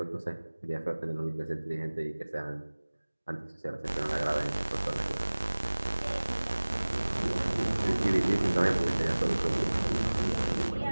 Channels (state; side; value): inverted; both; correlation -1.00